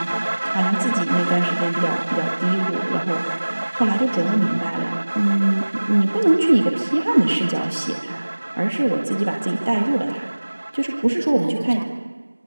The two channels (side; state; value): both; inverted; correlation -1.00